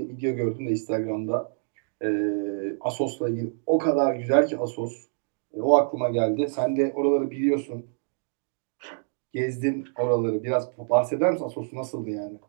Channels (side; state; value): left; silent; digital silence